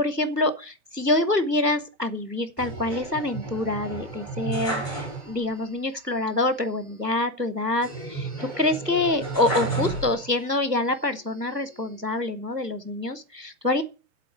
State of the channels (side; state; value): left; late; 1.4 ms